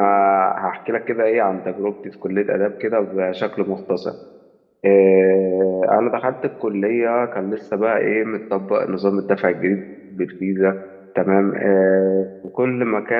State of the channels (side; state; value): both; identical; correlation 1.00